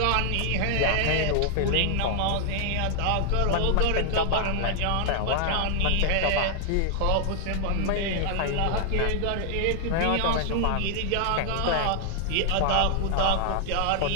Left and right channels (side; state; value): both; different; correlation 0.00